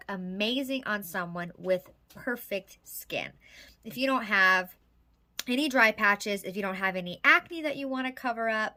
amazing on someone with perfect skin. If you don't have any dry patches, if you don't have any acne that you want to cover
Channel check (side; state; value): both; identical; correlation 1.00